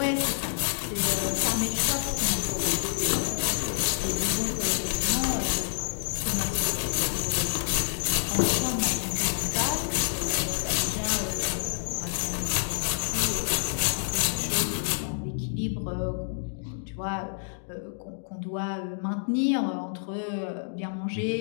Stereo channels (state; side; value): silent; right; digital silence